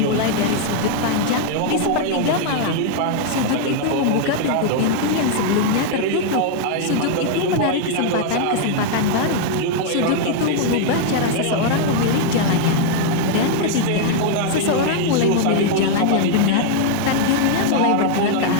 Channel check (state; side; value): different; both; correlation 0.00